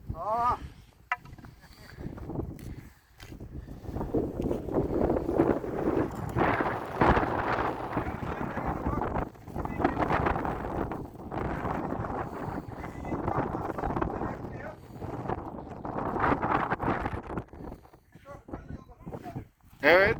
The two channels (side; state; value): both; identical; correlation 1.00